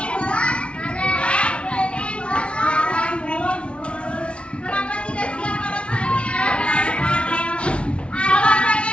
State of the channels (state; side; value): late; right; 0.059 ms